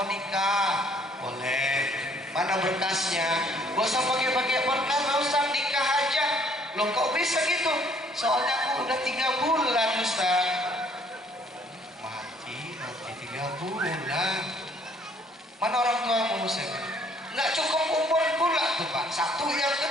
nikah? Boleh. Mana berkasnya? Gak usah pakai berkas, Ustaz, nikah aja. Loh, kok bisa gitu? Soalnya aku udah 3 bulan, Ustaz. Mati 3 bulan. Mana orang tuamu, Ustaz? Nggak cukup umur pula tuh, Pak. Satu, yang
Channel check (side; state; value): both; normal; correlation 0.62